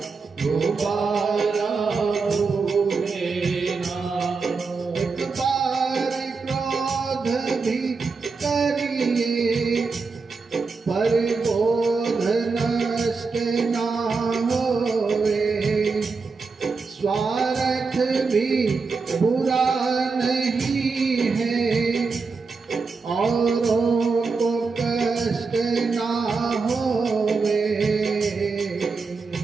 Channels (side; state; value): left; quieter; 4.5 dB